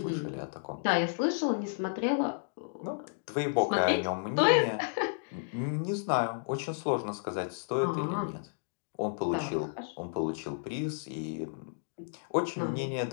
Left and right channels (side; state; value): right; silent; digital silence